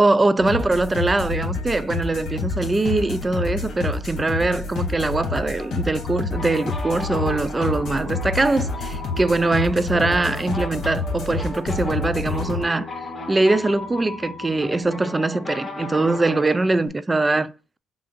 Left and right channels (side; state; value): both; normal; correlation 0.85